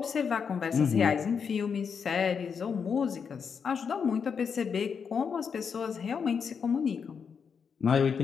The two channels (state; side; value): quieter; right; 6.4 dB